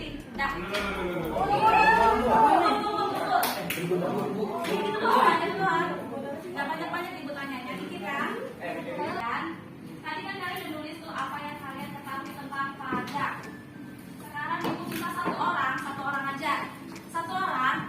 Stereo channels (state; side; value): identical; both; correlation 1.00